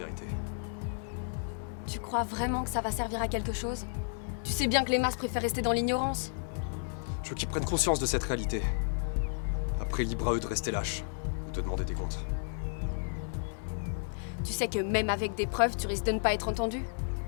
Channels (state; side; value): silent; right; digital silence